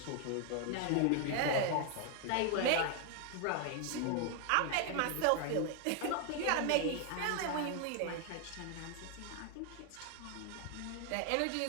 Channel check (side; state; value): both; different; correlation 0.00